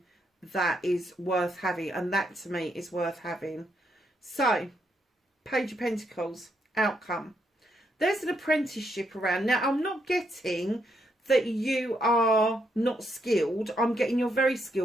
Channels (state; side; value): normal; both; correlation 0.77